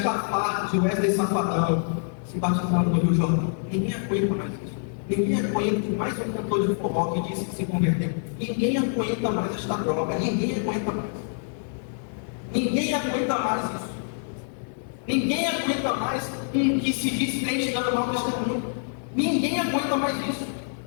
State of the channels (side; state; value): right; silent; 59 dB below the other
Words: farto de Wesley Safadão se batizando no Rio Jordão. Ninguém aguenta mais isso. Ninguém aguenta mais um cantor de forró que disse que se converteu. Ninguém aguenta mais esta droga. Ninguém aguenta mais. Ninguém aguenta mais isso. Ninguém aguenta mais um que se diz crente dando mau testemunho. Ninguém aguenta mais isso.